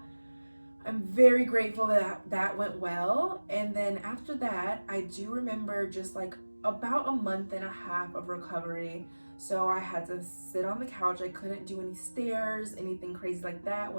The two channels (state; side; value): inverted; both; correlation -1.00